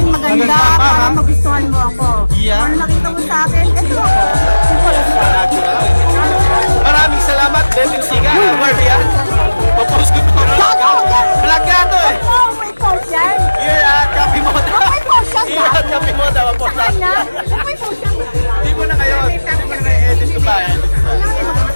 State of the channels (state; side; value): inverted; both; correlation -1.00